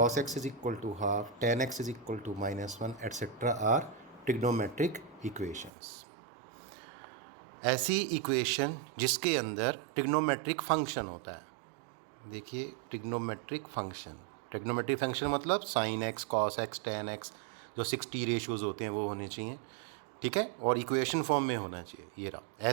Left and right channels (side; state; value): left; drops out; at 5.7 s